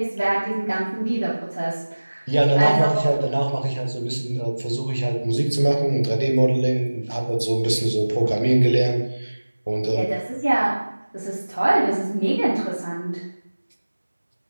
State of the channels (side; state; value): both; inverted; correlation -1.00